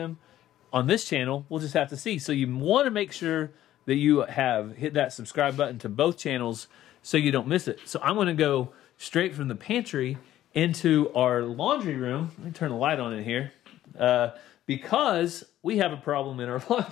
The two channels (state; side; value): quieter; right; 13.1 dB